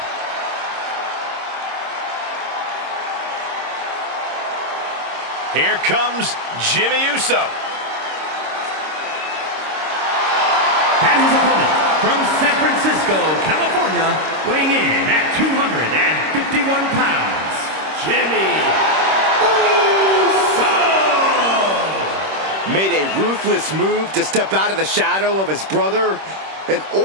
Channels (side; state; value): left; late; 26 ms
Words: Here comes Jimmy Uso. And his opponent from San Francisco, California, weighing in at 251 pounds, Jimmy Uso! Made a ruthless move to step out of the shadow of his brother in